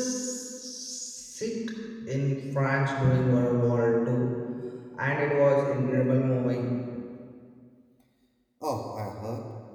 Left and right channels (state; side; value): identical; both; correlation 1.00